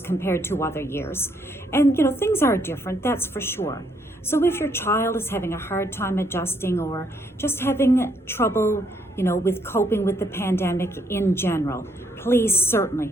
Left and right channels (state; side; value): normal; both; correlation 0.71